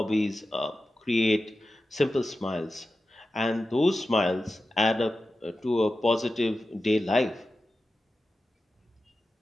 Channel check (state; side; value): normal; both; correlation 0.93